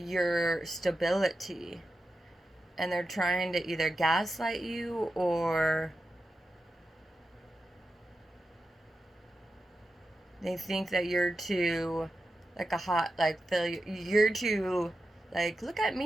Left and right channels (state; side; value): normal; both; correlation 0.90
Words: stability and they're trying to either gaslight you or They think that you're too, like a hot, like, failure. You're too, like, look at